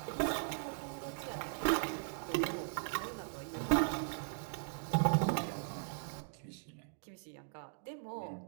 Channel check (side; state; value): left; silent; digital silence